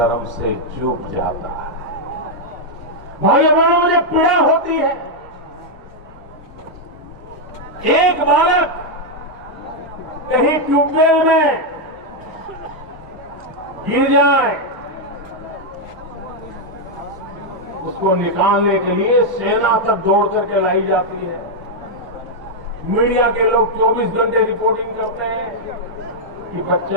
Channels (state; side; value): normal; both; correlation -0.01